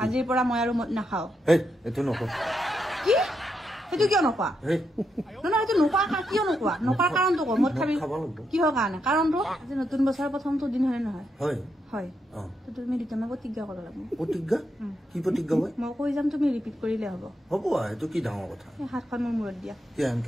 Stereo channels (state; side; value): normal; both; correlation 0.82